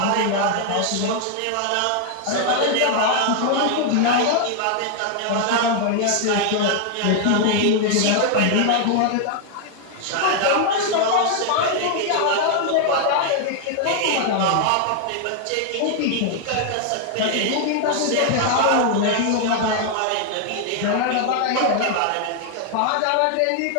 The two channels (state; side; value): different; both; correlation 0.00